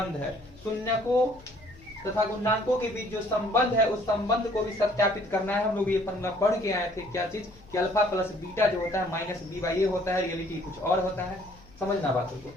है, शून्य को तथा गुणांकों के बीच जो संबंध है उस संबंध को भी सत्यापित करना है। हम लोग ये फॉर्मूला पढ़ के आए थे, क्या चीज कि अल्फा प्लस बीटा जो होता है माइनस बी बाई ए होता है, रियलिटी कुछ और होता है। समझना बातों को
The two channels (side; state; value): left; noise; hum, 24 dB below the sound